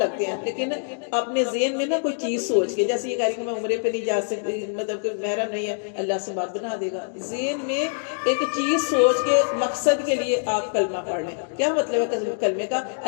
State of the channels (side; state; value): right; silent; digital silence